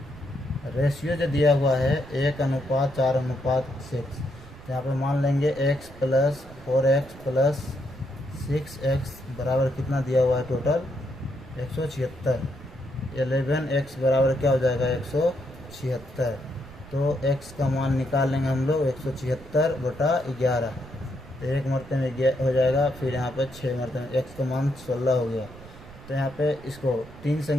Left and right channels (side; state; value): right; noise; rumble, 18 dB below the sound